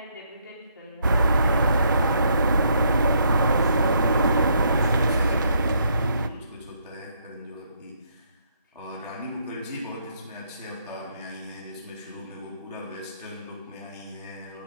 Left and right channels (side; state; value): both; inverted; correlation -0.71